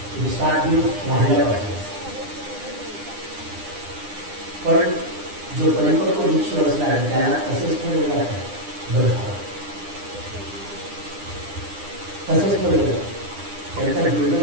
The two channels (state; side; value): late; left; 9.9 ms